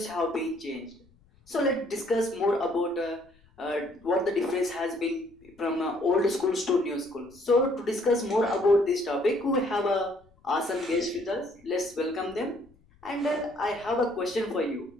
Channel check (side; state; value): left; noise; rumble, 30 dB below the sound